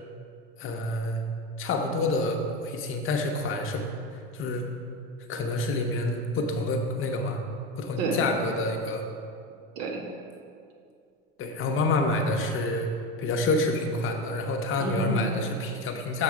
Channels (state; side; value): normal; both; correlation 0.20